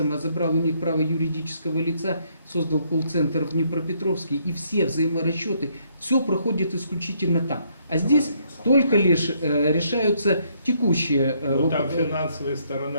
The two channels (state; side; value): inverted; both; correlation -0.70